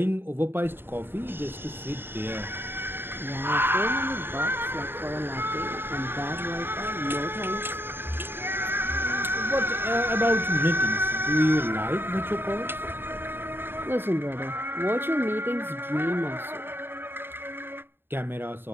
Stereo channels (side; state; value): left; late; 0.10 ms